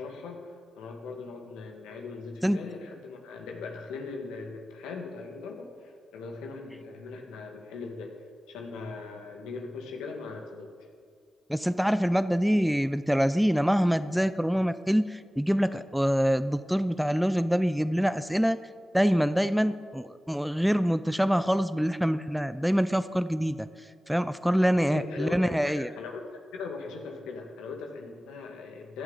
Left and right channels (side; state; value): both; normal; correlation 0.98